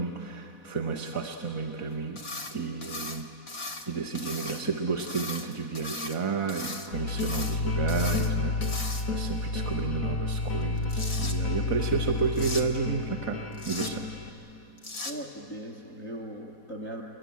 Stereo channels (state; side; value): late; right; 4.1 ms